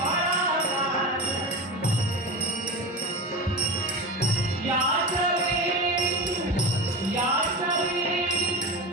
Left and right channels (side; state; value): both; normal; correlation 0.25